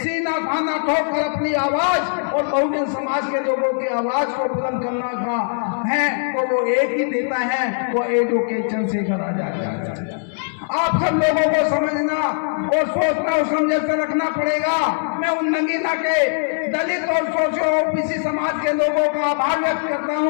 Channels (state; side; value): silent; right; digital silence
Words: सीना थाना ठोक कर अपनी आवाज और बहुजन समाज के लोगों की आवाज को बुलंद करना का है, तो वो एक ही देता है, वो एडवोकेट चंद्रशेखर आजाद है। आप सब लोगों को समझना और सोचना और समझ कर रखना पड़ेगा। मैं उन नगीना के दलित और सोशो ओबीसी समाज के लोगों का आभार व्यक्त करता